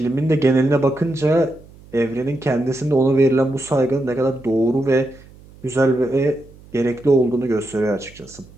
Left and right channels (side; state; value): right; noise; hum, 23 dB below the sound